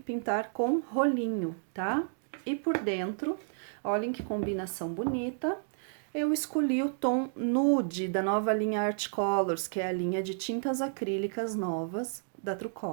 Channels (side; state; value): left; silent; digital silence